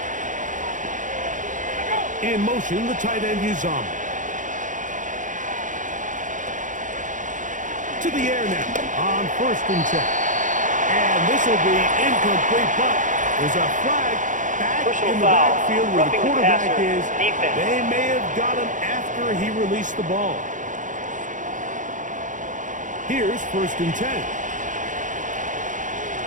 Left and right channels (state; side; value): late; left; 0.37 ms